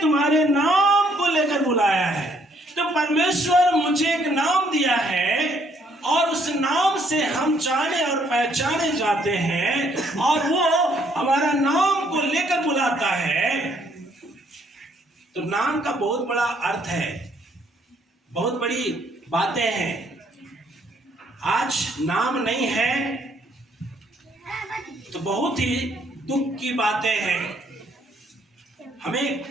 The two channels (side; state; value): both; normal; correlation 0.67